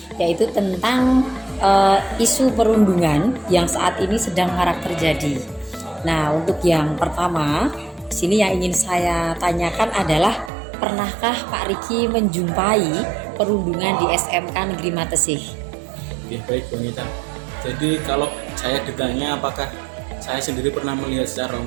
yaitu tentang isu perundungan yang saat ini sedang marak terjadi. Nah, untuk yang pertama, di sini yang ingin saya tanyakan adalah, pernahkah Pak Riki menjumpai perundungan di SMK Negeri Matesih? Ya, baik Bu Anita. Jadi kalau saya ditanya apakah saya sendiri pernah melihat secara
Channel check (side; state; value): left; drops out; at 10.5 s